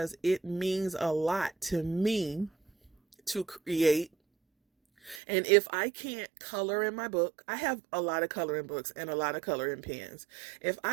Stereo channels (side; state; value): left; drops out; at 5.2 s